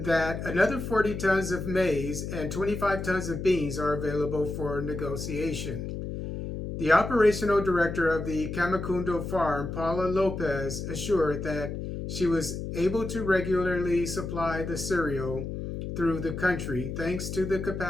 that another 40 tons of maize and 25 tons of beans are available for negotiation. The operational director of the Kamikundo farm, Paula Lopez, assured that she was able to regularly supply the cereal through the country thanks to the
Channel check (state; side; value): noise; left; hum, 6 dB below the sound